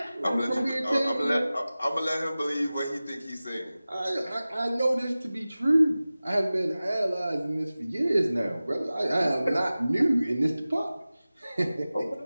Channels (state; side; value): inverted; both; correlation -0.97